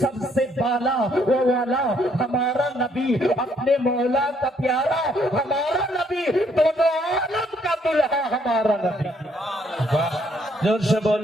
सबसे बाला ओ वाला हमारा नबी अपने मौला का प्यारा हमारा नबी दोनों आलम का दुल्हा हमारा नबी जोर से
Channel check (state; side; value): normal; both; correlation 0.68